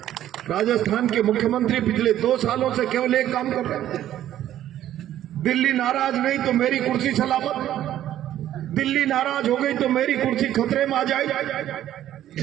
राजस्थान के मुख्यमंत्री पिछले 2 सालों से केवल एक काम कर रहे हैं, दिल्ली नाराज नहीं तो मेरी कुर्सी सलामत, दिल्ली नाराज हो गई तो मेरी कुर्सी खतरे में आ जाए,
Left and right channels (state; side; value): quieter; left; 12.2 dB